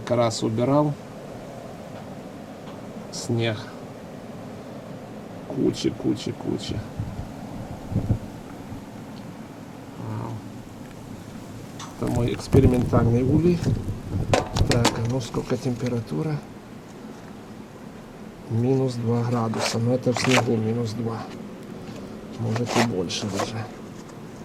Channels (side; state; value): both; identical; correlation 1.00